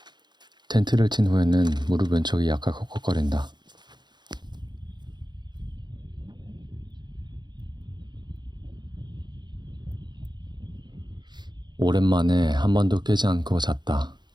텐트를 친 후에는 무릎 왼쪽이 약간 콕콕거린다. 오랜만에 한 번도 깨지 않고 잤다.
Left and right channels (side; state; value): left; late; 0.21 ms